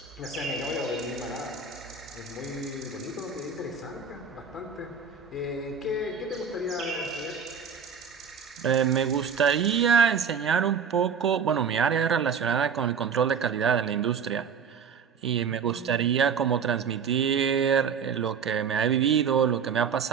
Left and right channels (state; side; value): quieter; left; 6.4 dB